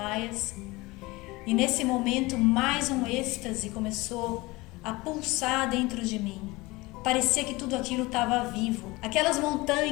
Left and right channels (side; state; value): right; quieter; 22.1 dB